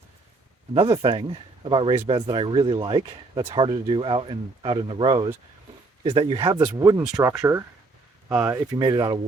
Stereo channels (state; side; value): quieter; left; 3.5 dB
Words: another thing about raised beds that I really like, that's harder to do out in the rows, is that you have this wooden structure, if you made it out of